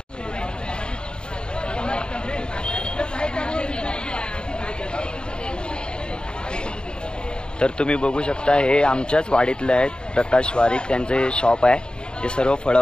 तर तुम्ही बघू शकता हे आमच्याच वाडीतले आहेत, प्रकाश वारीक. त्यांचे शॉप आहे. ते सर्व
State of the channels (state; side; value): late; right; 0.049 ms